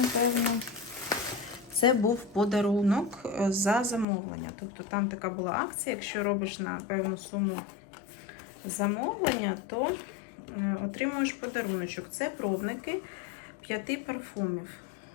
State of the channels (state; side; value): drops out; right; at 4.0 s